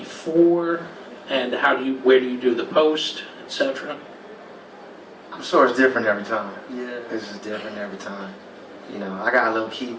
and where do you do the post, etc.? I'm sure it's different every time. Yeah. It's just different every time. You know, I got a little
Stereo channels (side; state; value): both; identical; correlation 1.00